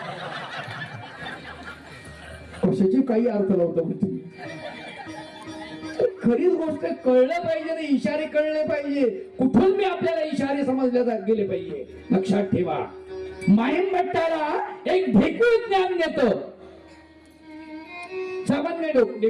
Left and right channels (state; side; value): identical; both; correlation 1.00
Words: कशाची काही अर्थ लावता तुम्ही. खरीच गोष्ट कळलं पाहिजे ना, इशारे कळले पाहिजे. कुठून मी आपल्याला इशारे समजल्या गेले पाहिजे. लक्षात ठेवा, माहीम भट्टाला एक ढेकूळ ज्ञान देतो. सामान्य